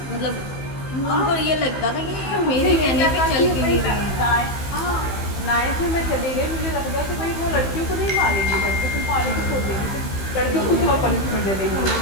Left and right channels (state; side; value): late; right; 15 ms